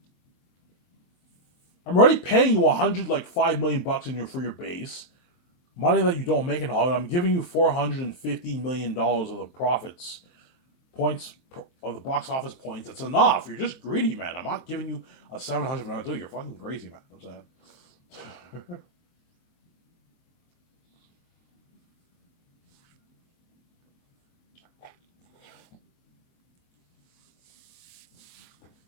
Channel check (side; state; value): right; late; 23 ms